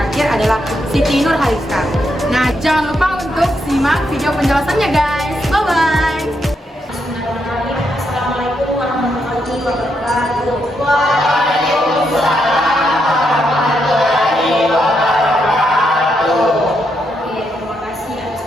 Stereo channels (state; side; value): normal; both; correlation 0.80